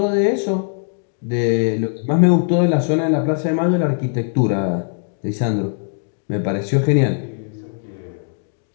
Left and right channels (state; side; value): silent; right; digital silence